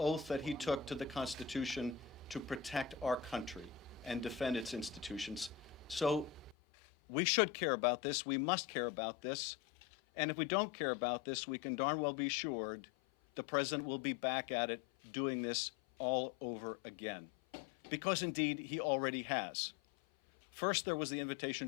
that he took to the Constitution to protect our country and defend its institutions. So we should care about this. We must care about this. And if we don't care about this, we can darn well be assured the President will be back at it doing this all over again. Because indeed, he already has. First, there was the invitation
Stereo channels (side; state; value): right; drops out; at 6.6 s